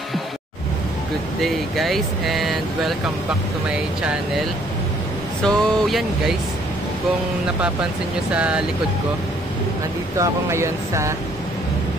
Good day guys, and welcome back to my channel. So yan guys, kung napapansin nyo sa likod ko, andito ako ngayon sa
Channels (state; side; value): normal; both; correlation 0.64